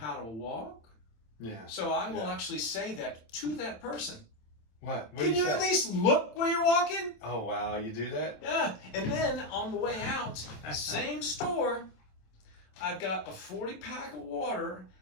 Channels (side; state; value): right; late; 27 ms